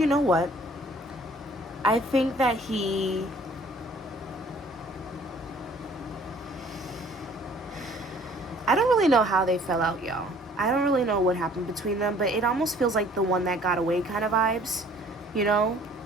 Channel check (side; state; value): both; normal; correlation 0.56